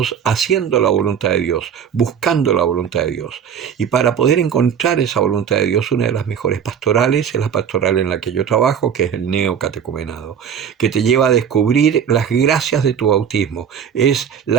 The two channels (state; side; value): quieter; left; 8.0 dB